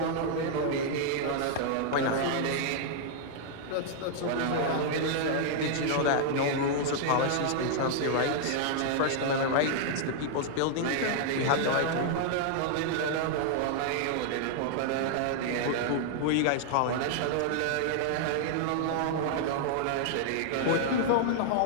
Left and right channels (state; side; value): different; both; correlation -0.01